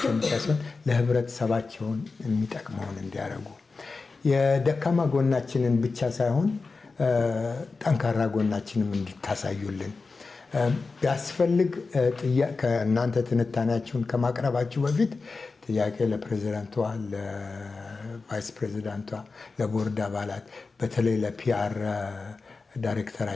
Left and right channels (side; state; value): right; quieter; 4.1 dB